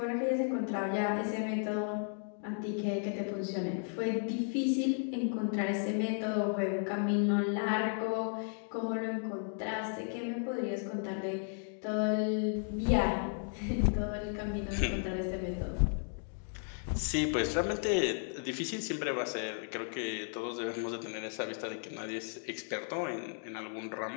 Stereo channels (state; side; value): silent; right; 55 dB below the other